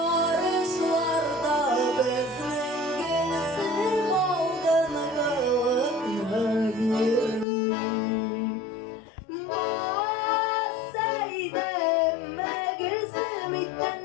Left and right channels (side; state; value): right; drops out; at 7.5 s